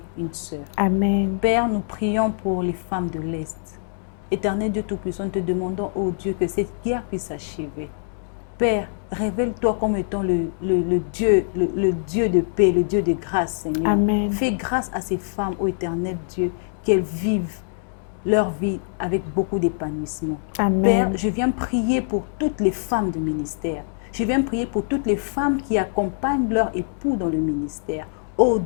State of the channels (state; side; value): silent; right; 63 dB below the other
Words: une sœur. Amen. Père, nous prions pour les femmes de l'Est. Éternel Dieu Tout-Puissant, nous te demandons, oh Dieu, que cette guerre puisse s'achever. Père, révèle-toi comme étant le Dieu de paix, le Dieu de grâce, Seigneur. Amen. Fais grâce à ces femmes, ô Éternel Dieu, qu'elles vivent leur vie avec beaucoup d'épanouissement. Père, je viens prier pour toutes les femmes du ministère. Je viens prier pour toutes les femmes qui accompagnent leur époux dans le ministère. Oh